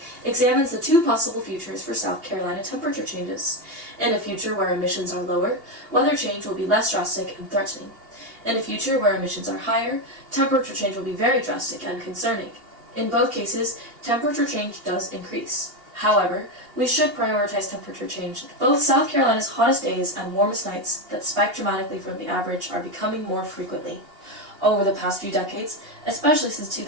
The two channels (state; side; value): late; left; 2.8 ms